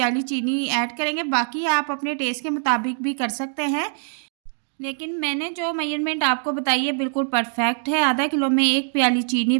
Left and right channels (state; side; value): silent; left; 63 dB below the other